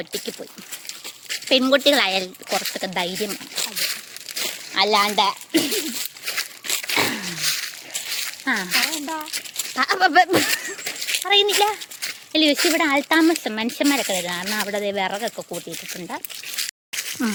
പോയി. പെൺകുട്ടികളായാൽ കുറച്ചൊക്കെ ധൈര്യം അല്ലാണ്ട് പറയുന്നില്ല. അല്ല പക്ഷെ ഇവിടെ ആൾത്താമസം മനുഷ്യന്മാരൊക്കെ വരും. കാരണം അവിടെ വിറകൊക്കെ കൂട്ടിയിട്ടിട്ടുണ്ട്.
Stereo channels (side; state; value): both; identical; correlation 1.00